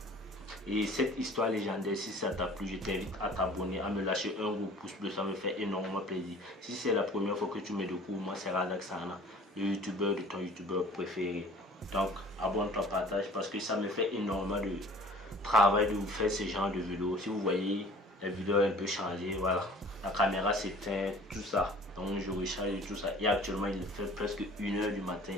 Et cette histoire légendaire, si ça t'a plu, je t'invite à t'abonner, à me lâcher un gros pouce bleu, ça me fait énormément plaisir. Si c'est la première fois que tu me découvres, moi c'est Radaxana, le youtubeur de ton youtubeur préféré. Donc abonne-toi, partage, parce que ça me fait énormément de travail de vous faire ce genre de vidéos. Si vous voyez, la vidéo est un peu changée, voilà, la caméra s'éteint, tout ça. Donc je recharge et tout ça. Et actuellement il fait presque 1h du matin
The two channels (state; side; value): normal; both; correlation 0.48